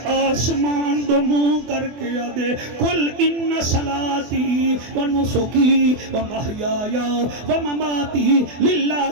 آسمان دو منہ کر کے آدھے قل ان صلاتی و نسکی و محیایا و مماتی للہ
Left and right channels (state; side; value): late; left; 24 ms